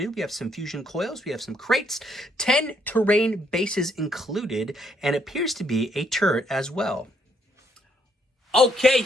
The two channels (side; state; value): both; normal; correlation 0.71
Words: We have some fusion coils, we have some crates, 10 terrain bases included, and appears to be a turret as well. Okay,